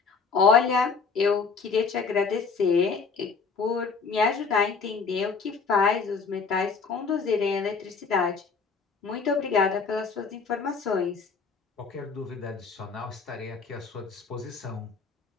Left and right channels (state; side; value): quieter; right; 5.1 dB